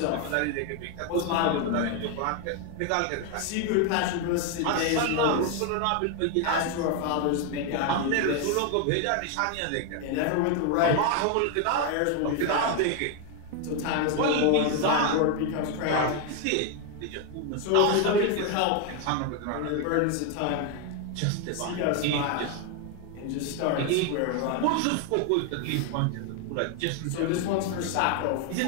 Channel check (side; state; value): both; different; correlation 0.01